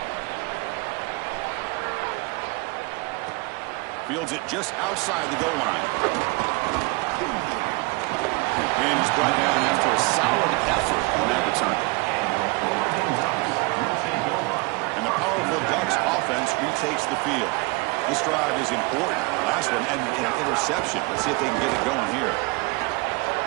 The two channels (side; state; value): left; quieter; 27.0 dB